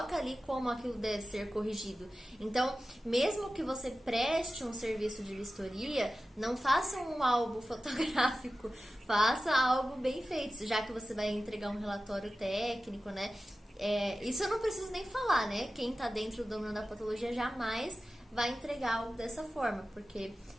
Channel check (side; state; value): both; normal; correlation 0.95